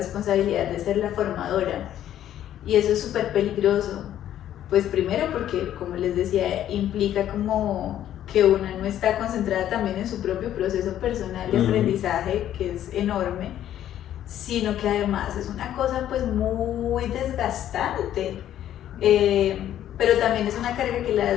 de ser la formadora. Y eso es súper peligroso. Pues primero porque, como les decía, implica como que una no está concentrada también en su propio proceso personal de aprendizaje, que es enorme, sino que además es una cosa pues muy desgastante. Pero también es una carga que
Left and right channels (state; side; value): quieter; right; 11.5 dB